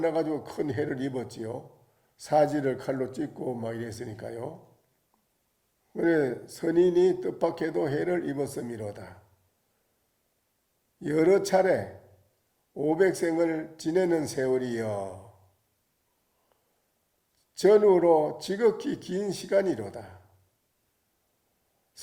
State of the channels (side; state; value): both; identical; correlation 1.00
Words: 큰 해를 입었지요. 사지를 칼로 찢고 막 이랬으니까요. 그래 선인이 뜻밖에도 해를 입었음이로다. 여러 차례 500생을 지내는 세월이여 전후로 지극히 긴 시간이로다.